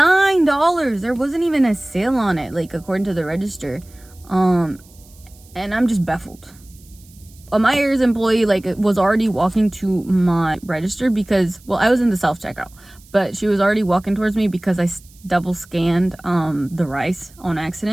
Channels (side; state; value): right; noise; hiss, 26 dB below the sound